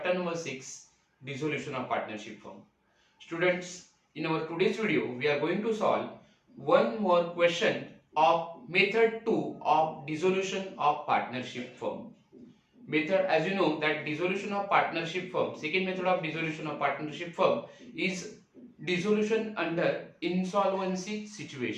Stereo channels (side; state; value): both; identical; correlation 1.00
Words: number 6, Dissolution of Partnership Firm. Students, in our today's video, we are going to solve one more question of method 2 of dissolution of partnership firm. Method, as you know, that dissolution of partnership firm, second method of dissolution of partnership firm is dissolution under insolvency